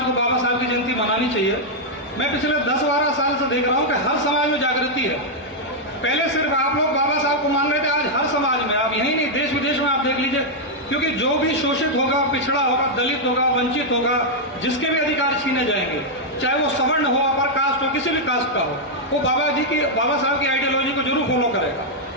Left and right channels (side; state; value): both; normal; correlation -0.03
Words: को बाबा साहब की जयंती मनानी चाहिए। मैं पिछले 10-12 साल से देख रहा हूं कि हर समाज में जागृति है। पहले सिर्फ आप लोग बाबा साहब को मान रहे थे, आज हर समाज में, आप यही नहीं, देश विदेश में आप देख लीजिए, क्योंकि जो भी शोषित होगा, पिछड़ा होगा, दलित होगा, वंचित होगा, जिसके भी अधिकार छीने जाएंगे, चाहे वो सवर्ण हो, अपर कास्ट हो, किसी भी कास्ट का हो, वो बाबा साहब की आइडियोलॉजी को जरूर फॉलो करेगा।